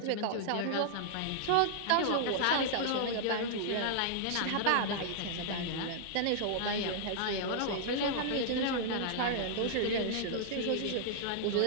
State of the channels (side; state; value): both; different; correlation -0.01